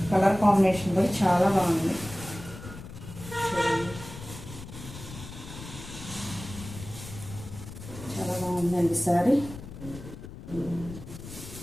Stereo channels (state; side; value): noise; left; rumble, 13 dB below the sound